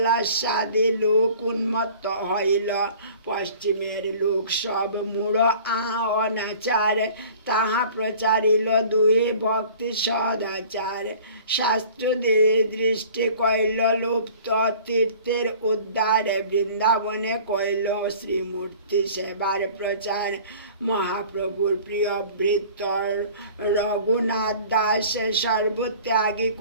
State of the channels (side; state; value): both; inverted; correlation -0.47